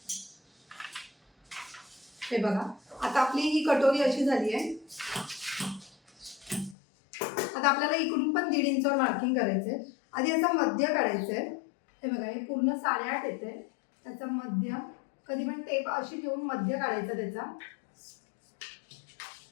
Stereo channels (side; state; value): right; drops out; at 6.8 s